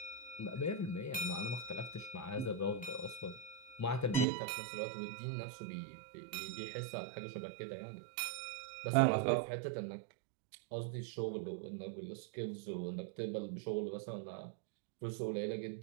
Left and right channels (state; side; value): drops out; left; at 4.2 s